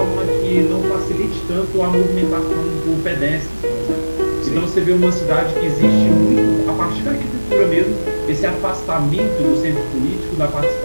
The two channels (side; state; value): both; inverted; correlation -1.00